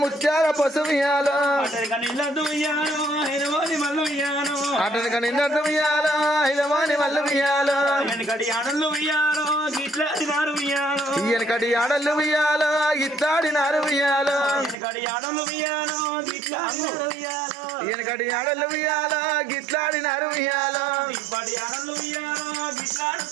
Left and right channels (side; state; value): left; drops out; at 14.8 s